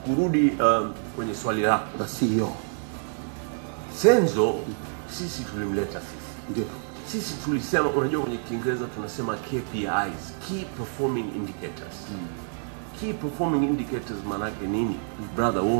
kurudi kwenye swali lako la CEO. Senzo sisi tulimleta sisi. Ndio. Sisi tulisema, unajua kwenye Kiingereza tunasema KPIs, key performing indicators. Key performing indicators maana yake nini? Brother, wewe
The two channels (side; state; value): left; silent; digital silence